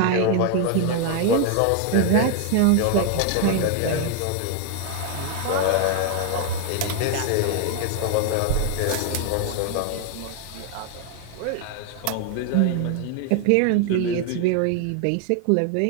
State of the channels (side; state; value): both; different; correlation 0.01